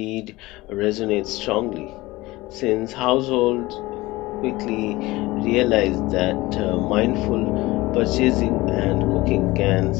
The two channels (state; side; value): quieter; right; 19.9 dB